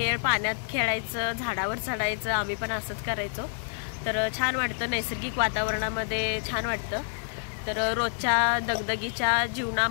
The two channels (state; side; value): silent; right; 59 dB below the other